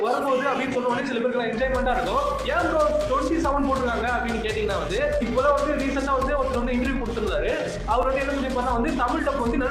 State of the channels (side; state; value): both; identical; correlation 1.00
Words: வரும்போது அப்படின்னு சொல்லுவாங்க. சில பேருக்கு என்ஜாய்மெண்டா இருக்கும். ஏன் ப்ரோ 27 போட்டுருக்காங்க அப்படின்னு கேட்டீங்கன்னா வந்து இப்போதான் வந்து ரீசெண்டா வந்து ஒருத்தர் வந்து இன்டர்வியூ கொடுத்திருந்தாரு. அவர் வந்து என்ன சொல்லியிருப்பாருன்னா வந்து தமிழ் டப் வந்து